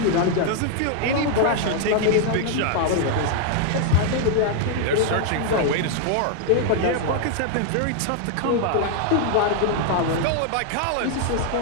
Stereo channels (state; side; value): different; both; correlation 0.00